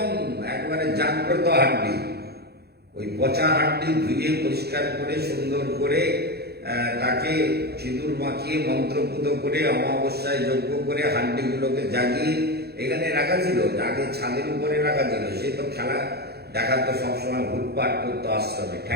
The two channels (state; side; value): late; left; 0.47 ms